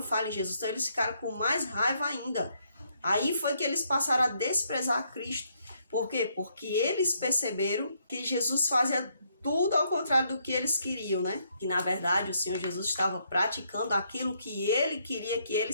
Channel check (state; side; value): inverted; both; correlation -0.73